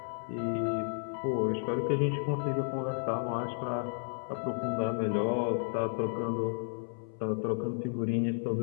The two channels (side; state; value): right; silent; 56 dB below the other